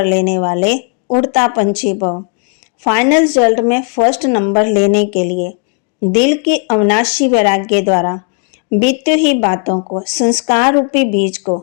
लेने वाले उड़ता पंछी भव। फाइनल रिजल्ट में फर्स्ट नंबर लेने के लिए दिल की अविनाशी वैराग्य द्वारा बीती हुई बातों को, संस्कार रूपी बीज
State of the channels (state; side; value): quieter; right; 38.6 dB